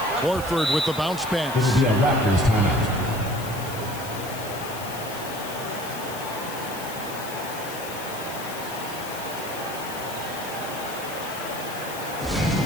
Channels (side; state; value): left; noise; hiss, 12 dB below the sound